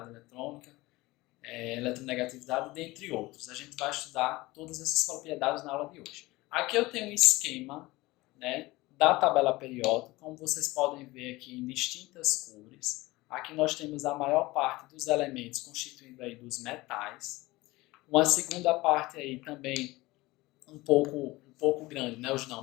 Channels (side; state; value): right; quieter; 20.4 dB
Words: eletrônica, eletronegatividade, dentre outros. A gente vai estudar todas essas propriedades na aula de hoje. Aqui eu tenho um esquema, né, da tabela periódica, como vocês podem ver aqui em distintas cores. Aqui nós temos a maior parte dos elementos constituindo aí dos metais. Uma segunda parte aí também um pouco grande, né, os não